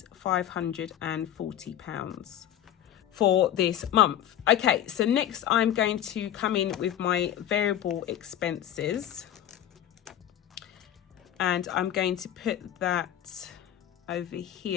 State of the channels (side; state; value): right; quieter; 11.1 dB